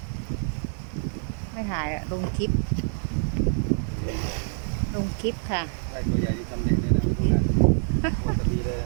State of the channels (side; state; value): left; silent; digital silence